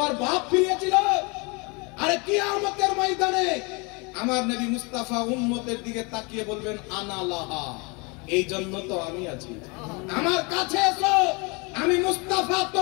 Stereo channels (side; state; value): right; quieter; 29.8 dB